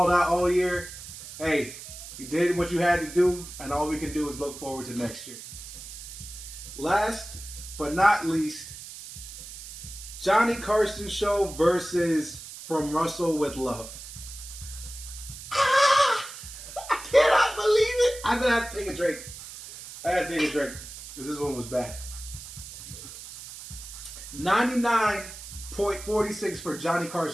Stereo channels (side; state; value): right; noise; hiss, 13 dB below the sound